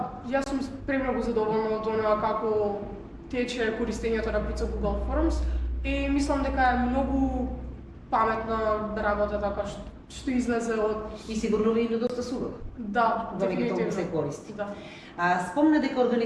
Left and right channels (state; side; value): identical; both; correlation 1.00